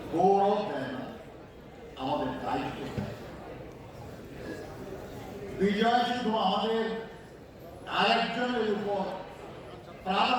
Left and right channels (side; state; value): both; identical; correlation 1.00